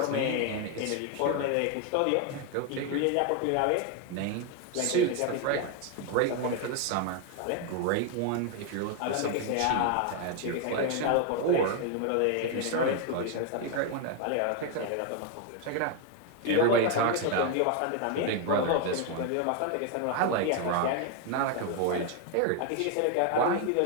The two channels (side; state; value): both; different; correlation 0.01